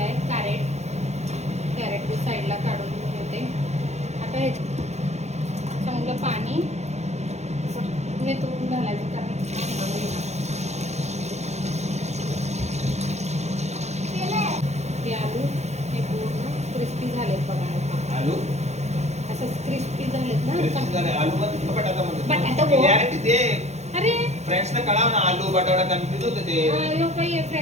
आहे कॅरेट साईडला काढून ठेवते. आता हे चांगलं पाणी निथळून घालायचं कारण हे आलू हे पूर्ण क्रिस्पी झालेत बघा. आलू असं क्रिस्पी झालेत ना. अरे फ्रेंड्सला कळाव ना आलू बटाटा कन्फ्युज होते ते. काही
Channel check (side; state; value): left; late; 0.32 ms